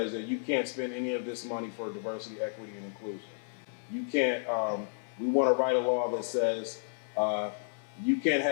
that you can't spend any of this money for diversity, equity, and inclusion. You can't, we want to write a law that says you can't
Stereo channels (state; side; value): silent; right; 56 dB below the other